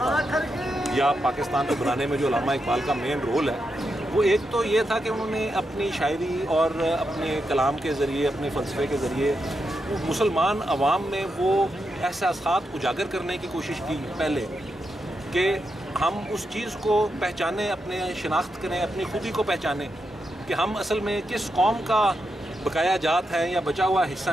یا پاکستان کو بنانے میں جو علامہ اقبال کا مین رول ہے وہ ایک تو یہ تھا کہ انہوں نے اپنی شاعری اور اپنے کلام کے ذریعے اپنے فلسفے کے ذریعے مسلمان عوام میں وہ احساسات اجاگر کرنے کی کوشش کی پہلے کہ ہم اس چیز کو پہچانیں، اپنے شناخت کریں، اپنی خودی کو پہچانیں کہ ہم اصل میں کس قوم کا بقایا جات ہیں یا بچا ہوا حصہ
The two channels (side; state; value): both; normal; correlation 0.85